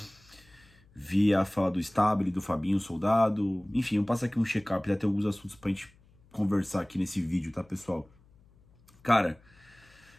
vi a fala do Stabile, do Fabinho Soldado, enfim, eu passo aqui um check-up, já tem alguns assuntos pra gente conversar aqui nesse vídeo, tá, pessoal? Cara,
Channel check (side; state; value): left; noise; hum, 29 dB below the sound